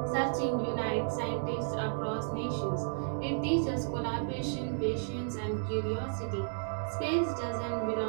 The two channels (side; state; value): left; silent; digital silence